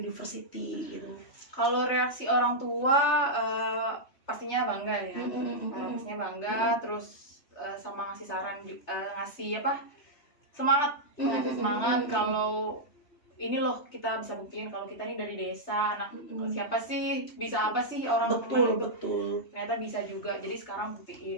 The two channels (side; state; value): right; late; 3.3 ms